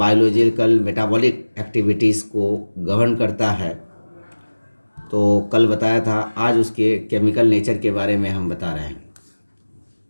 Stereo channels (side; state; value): both; inverted; correlation -1.00